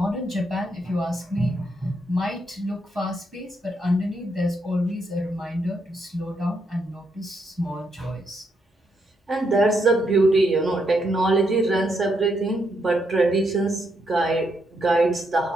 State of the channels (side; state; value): both; normal; correlation 0.78